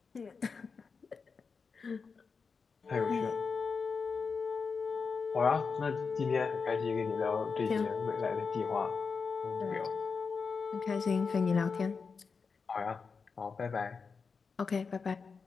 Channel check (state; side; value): quieter; right; 5.1 dB